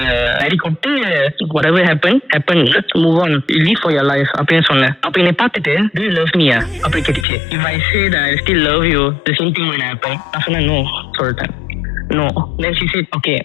அடி கொட்டு whatever happened let's move on, live for your life அப்படின்னு சொன்னேன். அப்ப என்னை பார்த்துட்டு do you love me அப்படி கேட்டுச்சு. if I say that I still love you the same thing will happen. நான் சொன்னேன் no சொல்லிட்டேன். no. Then she said, okay,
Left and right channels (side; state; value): right; drops out; at 7.2 s